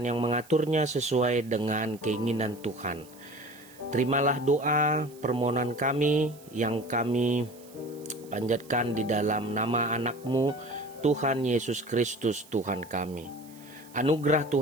yang mengaturnya sesuai dengan keinginan Tuhan. Terimalah doa permohonan kami yang kami panjatkan di dalam nama anak-Mu, Tuhan Yesus Kristus Tuhan kami. Anugerah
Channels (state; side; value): noise; right; hiss, 24 dB below the sound